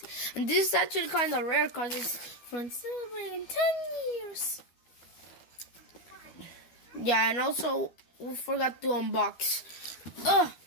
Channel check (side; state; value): right; late; 12 ms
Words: and this is actually kind of rare because it's from celebrating 10 years. Yeah, and also we forgot to unbox.